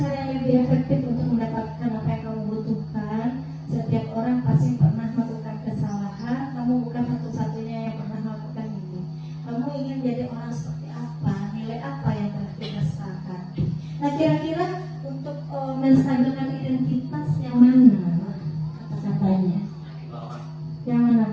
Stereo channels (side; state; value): both; identical; correlation 1.00